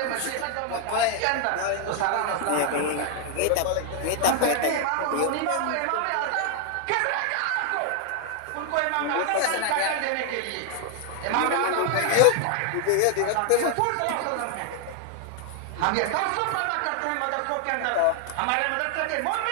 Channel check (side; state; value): both; different; correlation 0.00